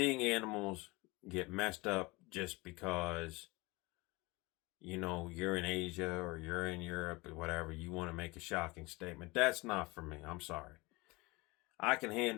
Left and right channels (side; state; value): right; quieter; 23.6 dB